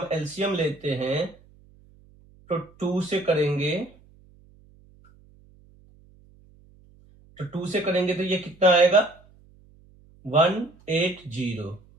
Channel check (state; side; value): noise; right; hum, 28 dB below the sound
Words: एलसीएम लेते हैं तो 2 से करेंगे, तो 2 से करेंगे तो ये कितना आएगा 180।